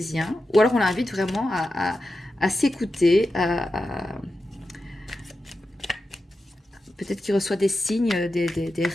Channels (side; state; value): both; normal; correlation 0.91